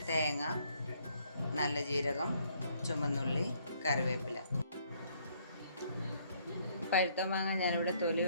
തേങ്ങ, നല്ല ജീരകം, ചുമന്നുള്ളി, കറിവേപ്പില. പഴുത്ത മാങ്ങ ഞാനിവിടെ തൊലി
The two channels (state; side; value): inverted; both; correlation -0.66